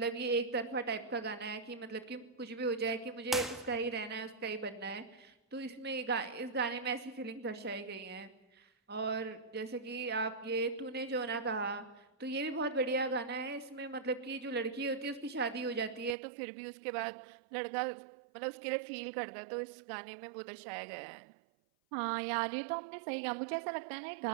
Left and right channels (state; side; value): drops out; left; at 16.2 s